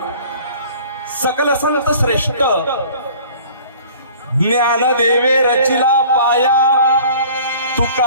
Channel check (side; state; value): both; inverted; correlation -0.49